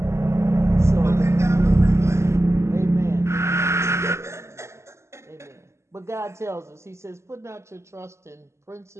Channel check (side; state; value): left; late; 0.13 ms